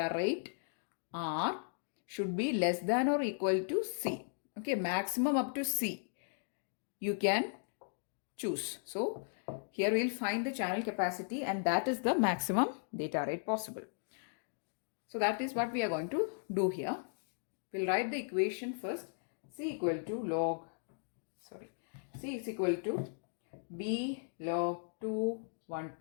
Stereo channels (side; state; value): right; silent; digital silence